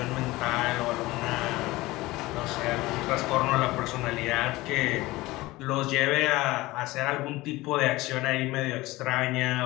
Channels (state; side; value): quieter; right; 19.5 dB